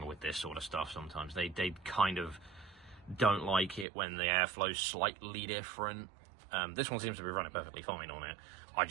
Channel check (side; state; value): left; drops out; at 3.9 s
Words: with this sort of stuff sometimes. They kind of don't like it when the airflow's slightly different. This one seems to be running perfectly fine on it. I